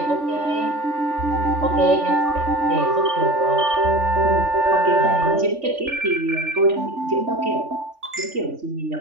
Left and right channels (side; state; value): left; late; 3.4 ms